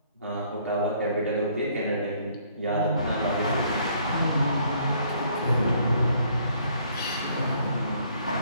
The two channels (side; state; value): both; inverted; correlation -0.64